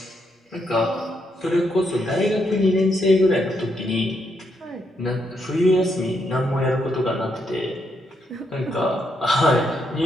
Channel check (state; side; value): normal; both; correlation 0.78